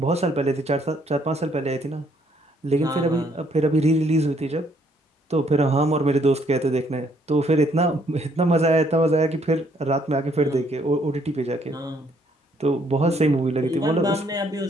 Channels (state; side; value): normal; both; correlation 0.67